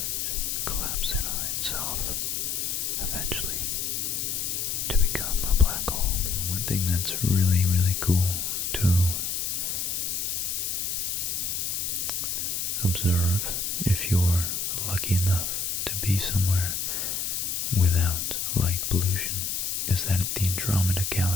collapse in on itself eventually to become a black hole. One thing that's really, really cool to observe if you're lucky enough to be somewhere without light pollution is that the Andromeda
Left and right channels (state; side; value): noise; left; hiss, 1 dB below the sound